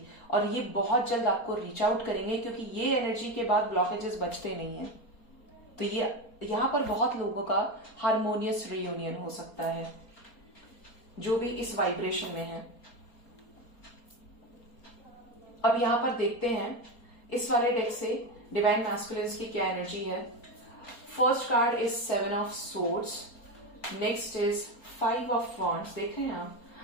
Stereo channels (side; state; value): right; late; 4.3 ms